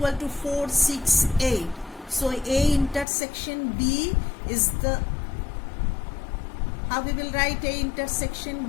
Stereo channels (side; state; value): right; drops out; at 3.1 s